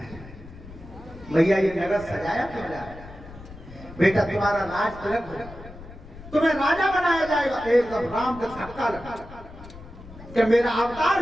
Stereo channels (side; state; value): left; noise; rumble, 16 dB below the sound